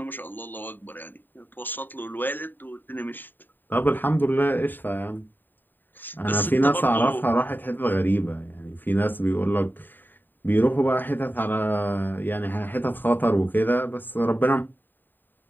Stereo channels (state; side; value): late; right; 0.091 ms